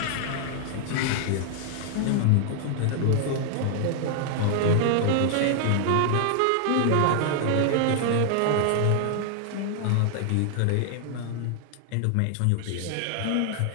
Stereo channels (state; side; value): different; both; correlation 0.00